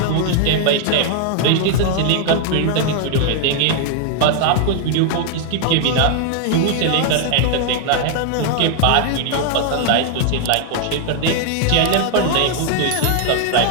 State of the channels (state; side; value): different; both; correlation 0.00